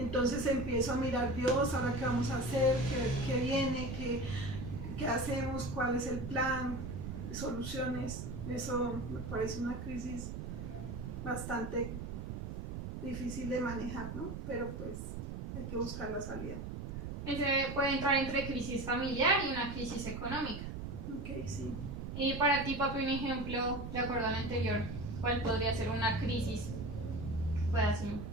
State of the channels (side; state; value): right; noise; rumble, 6 dB below the sound